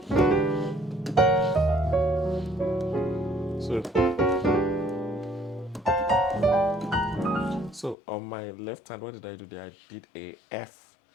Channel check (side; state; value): right; drops out; at 8.0 s